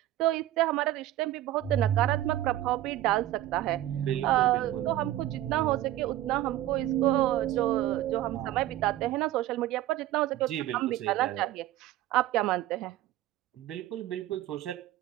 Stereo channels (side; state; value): left; quieter; 14.1 dB